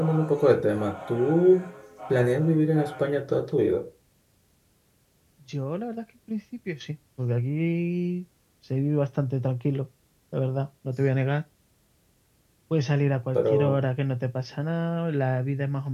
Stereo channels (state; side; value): identical; both; correlation 1.00